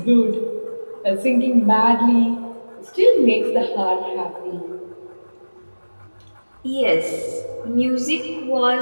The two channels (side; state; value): both; inverted; correlation -1.00